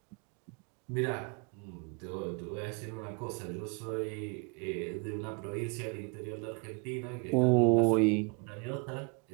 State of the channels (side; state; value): left; quieter; 33.7 dB